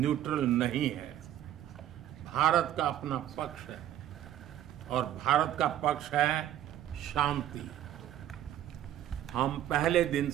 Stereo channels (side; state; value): left; quieter; 11.9 dB